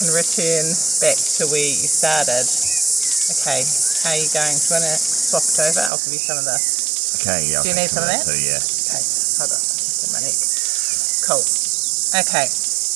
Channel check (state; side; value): drops out; left; at 5.9 s